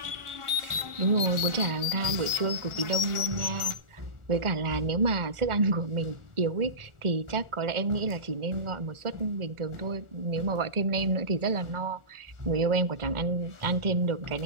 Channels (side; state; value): left; late; 1.4 ms